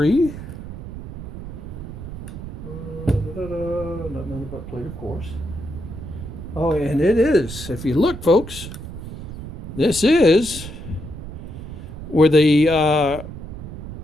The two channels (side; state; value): right; noise; rumble, 10 dB below the sound